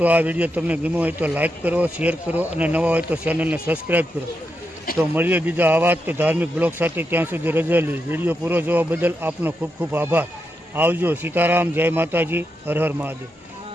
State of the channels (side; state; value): both; normal; correlation 0.85